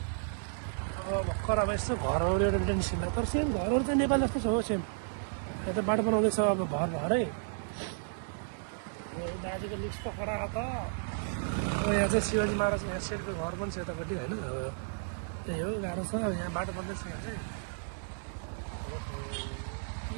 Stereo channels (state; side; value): silent; left; digital silence